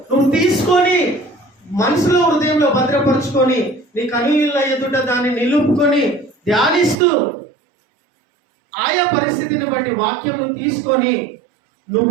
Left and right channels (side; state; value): left; drops out; at 7.0 s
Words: నువ్వు తీసుకొని మనసులో హృదయంలో భద్రపరుచుకొని నీ కనుల ఎదుట దాన్ని నిలుపుకొని ధ్యానిస్తూ ఆయా పరిస్థితిని బట్టి వాక్యంను తీసుకొని